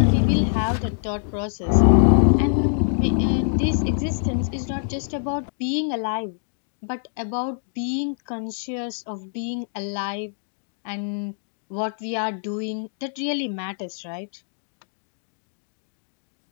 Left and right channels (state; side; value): silent; right; digital silence